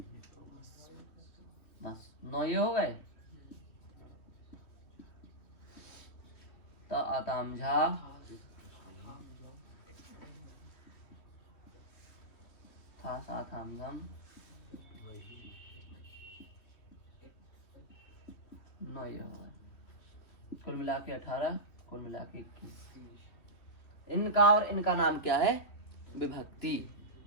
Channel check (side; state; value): right; late; 3.1 ms